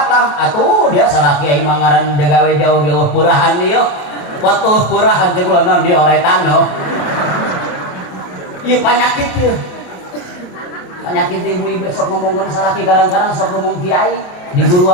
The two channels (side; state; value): right; late; 28 ms